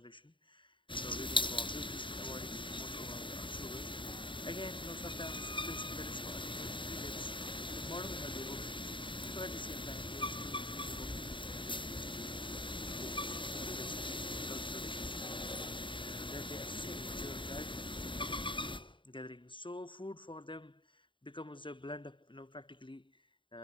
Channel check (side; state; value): right; late; 0.24 ms